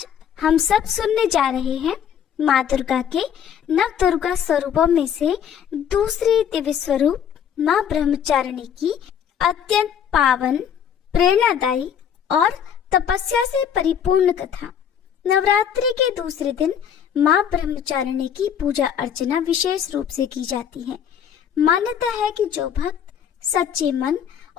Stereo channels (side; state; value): right; quieter; 8.5 dB